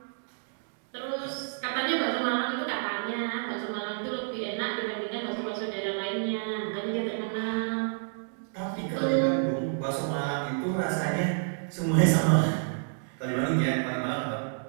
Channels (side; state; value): left; silent; digital silence